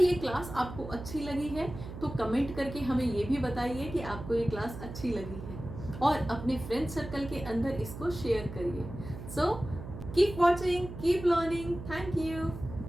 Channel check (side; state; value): right; noise; hum, 11 dB below the sound